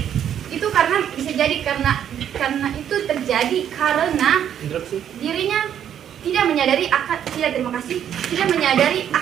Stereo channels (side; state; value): left; quieter; 9.6 dB